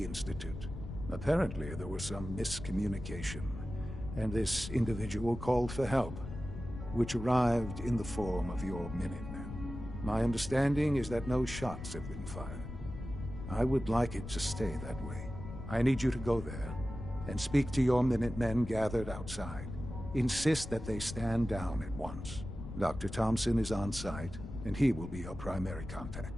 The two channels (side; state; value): left; noise; rumble, 9 dB below the sound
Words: Institute. Apparently, there was some miscommunication, and this individual called for help, which arrived in the form of your Minutemen. My understanding is that no shots have been fired. I would like it to stay that way. I need you to go there and speak to your Minutemen gathered outside. Insist that they stand down at once. Dr. Thompson is on site, and he will be your primary contact.